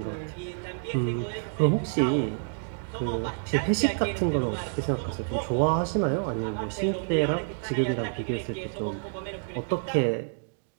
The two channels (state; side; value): silent; left; digital silence